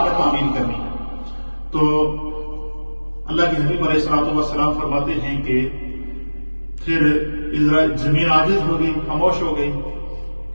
میں تعمیل کرنی ہے۔ تو اللہ کے حبیب علیہ الصلوۃ والسلام فرماتے ہیں کہ پھر زمین عاجز ہو گئی، خاموش ہو گئی۔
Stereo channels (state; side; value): inverted; both; correlation -1.00